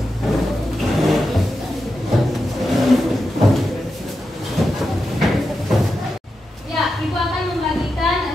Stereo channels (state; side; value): normal; both; correlation 0.89